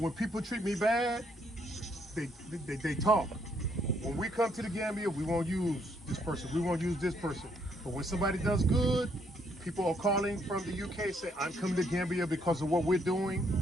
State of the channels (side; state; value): both; normal; correlation 0.71